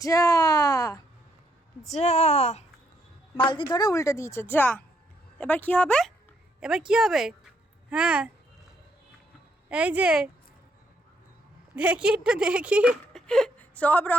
যা বালতি ধরে উল্টে দিয়েছে, যা। এবার কি হবে? হ্যাঁ এই যে দেখি সব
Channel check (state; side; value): normal; both; correlation 0.74